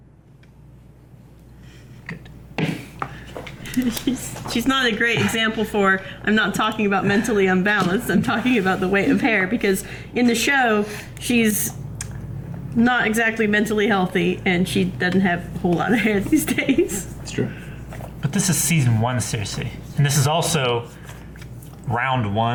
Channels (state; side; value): identical; both; correlation 1.00